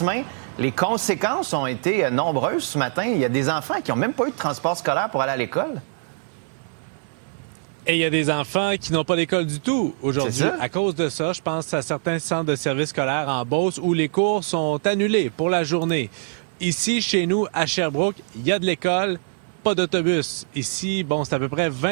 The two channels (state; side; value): silent; left; 63 dB below the other